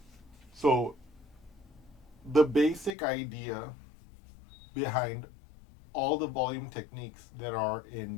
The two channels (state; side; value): drops out; right; at 3.0 s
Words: so the basic idea behind all the volume techniques that are in